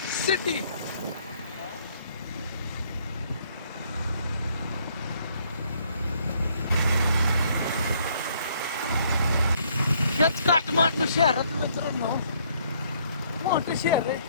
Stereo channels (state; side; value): inverted; both; correlation -0.66